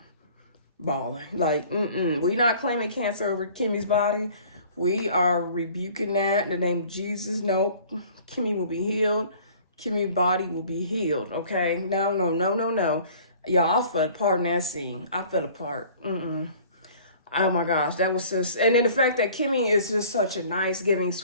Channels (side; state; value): both; inverted; correlation -0.50